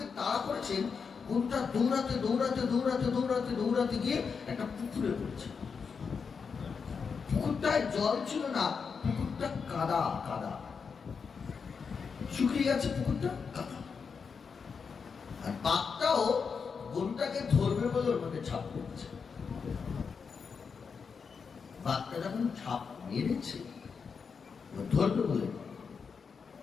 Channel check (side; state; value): right; quieter; 5.7 dB